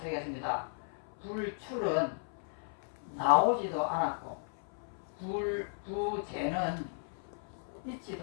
불출은 나오지도 않았고 부재는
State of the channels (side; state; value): right; silent; 54 dB below the other